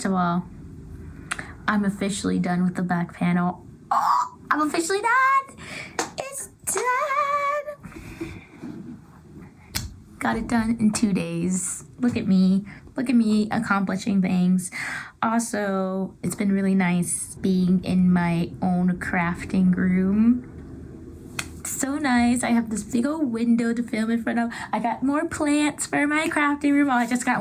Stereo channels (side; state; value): both; identical; correlation 1.00